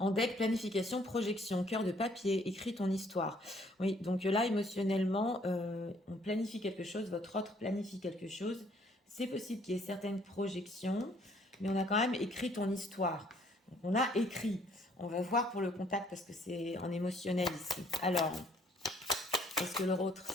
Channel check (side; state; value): both; normal; correlation 0.63